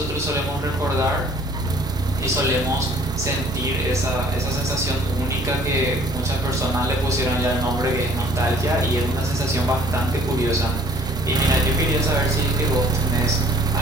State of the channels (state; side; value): normal; both; correlation 0.56